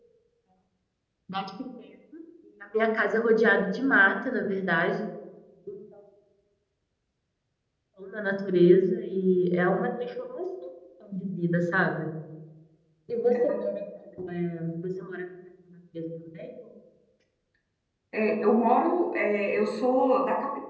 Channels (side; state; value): both; identical; correlation 1.00